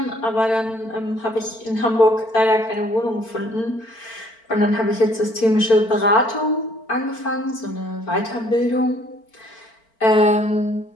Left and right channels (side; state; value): right; late; 4.4 ms